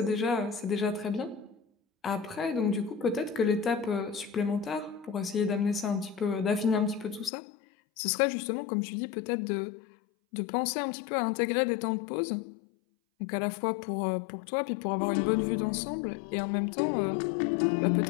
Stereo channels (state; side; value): drops out; right; at 7.3 s